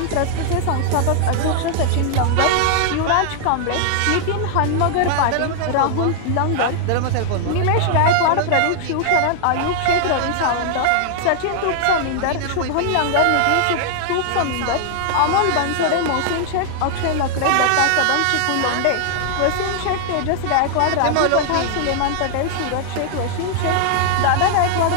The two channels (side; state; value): both; different; correlation -0.01